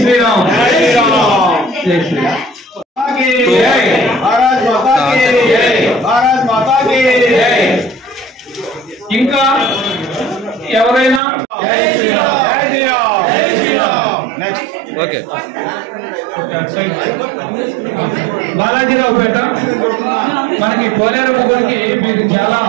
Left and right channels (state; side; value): drops out; left; at 11.2 s